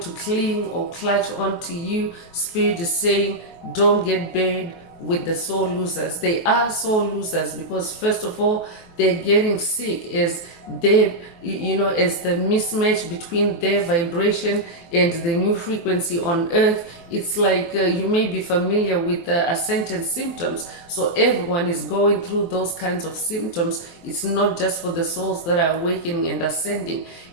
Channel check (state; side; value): late; right; 23 ms